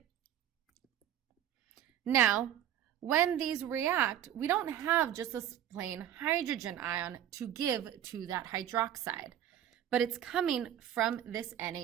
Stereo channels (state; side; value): quieter; left; 10.9 dB